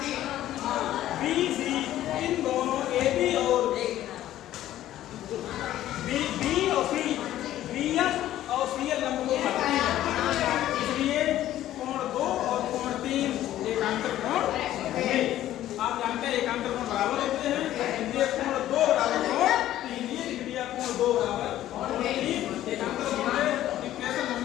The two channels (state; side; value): quieter; right; 13.2 dB